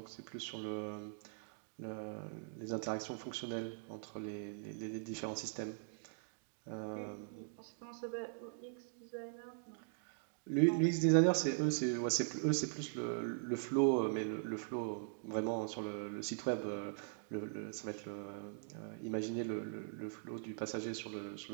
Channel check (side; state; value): left; silent; digital silence